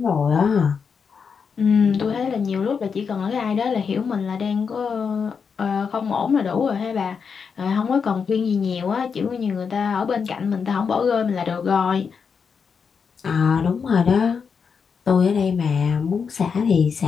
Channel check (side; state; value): right; quieter; 6.0 dB